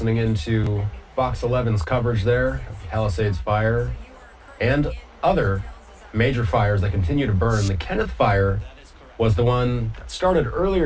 into Fox 11's coverage there of the Palisades fire and other major fires that continue to burn. The Kenneth fire was the one that started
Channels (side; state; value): both; identical; correlation 1.00